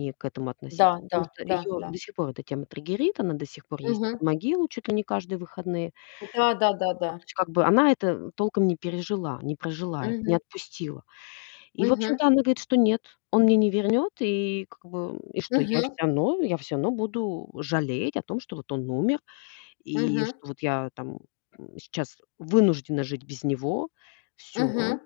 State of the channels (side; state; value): right; silent; 60 dB below the other